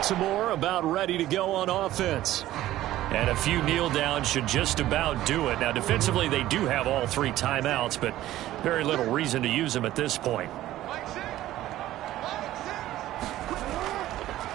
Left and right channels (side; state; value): left; quieter; 14.6 dB